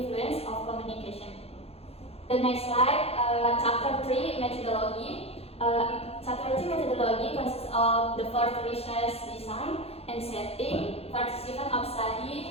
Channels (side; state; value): right; late; 0.29 ms